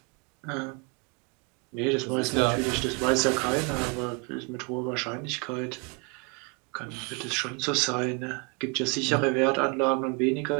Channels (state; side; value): quieter; left; 31.8 dB